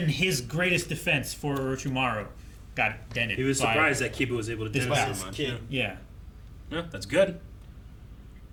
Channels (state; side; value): identical; both; correlation 1.00